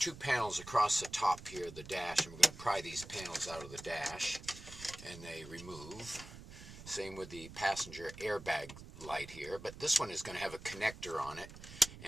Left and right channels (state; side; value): noise; right; rumble, 15 dB below the sound